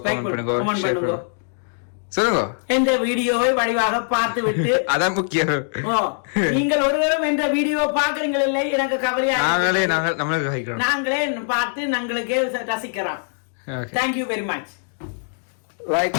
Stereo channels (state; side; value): silent; right; digital silence